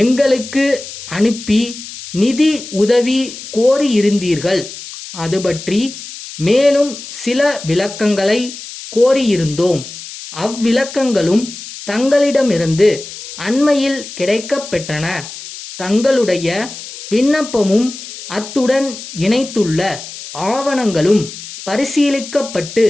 எங்களுக்கு அனுப்பி நிதி உதவி கோரியிருந்தீர்கள். அது பற்றி மேலும் சில விளக்கங்களை கோரியிருந்தோம். அவ்விளக்கங்களும் தங்களிடமிருந்து அண்மையில் கிடைக்கப்பெற்றன. தங்களுடைய விண்ணப்பமும் அத்துடன் இணைத்துள்ள ஆவணங்களும் பரிசீலிக்கப்பட்டு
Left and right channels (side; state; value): left; noise; hiss, 12 dB below the sound